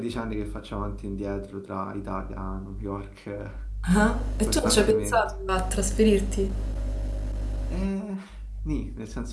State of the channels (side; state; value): both; identical; correlation 1.00